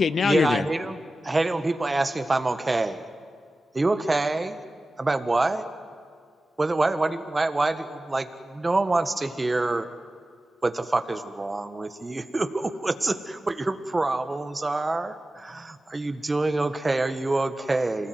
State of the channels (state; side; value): normal; both; correlation 0.95